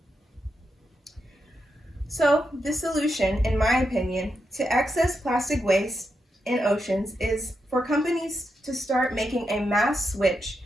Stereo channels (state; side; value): normal; both; correlation 0.85